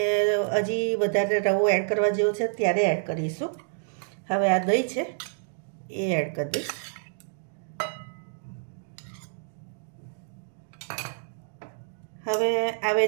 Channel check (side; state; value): left; silent; digital silence